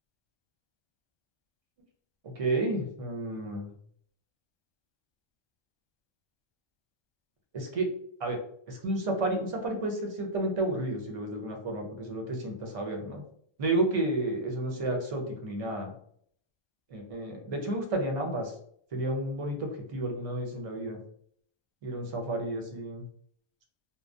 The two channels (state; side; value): late; right; 1.2 ms